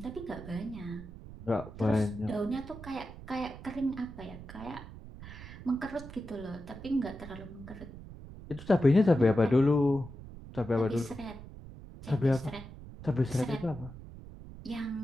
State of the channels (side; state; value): right; noise; rumble, 14 dB below the sound